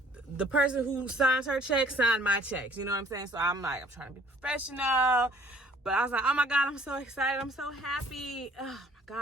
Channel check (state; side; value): normal; both; correlation 0.57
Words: the person who signs her checks signed my checks, you know what I'm saying? So I'm like, I'm trying to be professional, but I was like, oh my God, I'm so excited, I'm so happy. Oh my